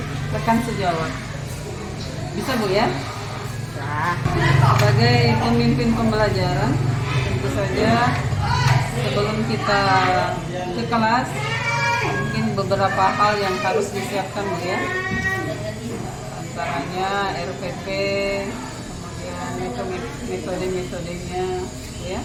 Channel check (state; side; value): identical; both; correlation 1.00